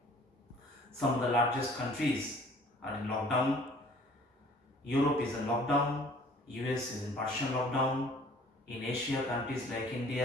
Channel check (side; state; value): both; normal; correlation 0.53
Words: Some of the largest countries are in lockdown. Europe is in lockdown, US is in partial lockdown. In Asia, countries like